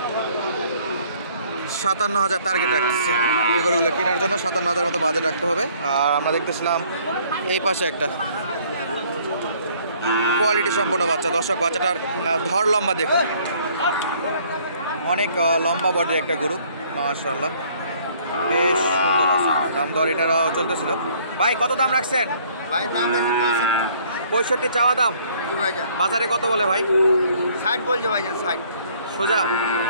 57,000 টার্গেট রাখতেছে এই গরুগুলো কেনার জন্য। 57,000 মতো বাজেট রাখতে হবে। আর আমরা দেখতেছিলাম এই পাশে একটা কোয়ালিটি সম্পূর্ণ বাচ্চা। দর্শক, বাচ্চাটার ধর লম্বা দেখুন, অনেক লম্বা বডির একটা গরু, মাশাআল্লাহ, বেশ সুন্দর আছে। দাম দর এটারও চলতেছিল। ভাই কত দাম রাখছেন? ভাই দাম আছে 65 চাওয়া দাম। বাজারে কত বলে ভাই? 60 বলছে ভাই, 60 সোজা।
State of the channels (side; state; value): both; inverted; correlation -0.60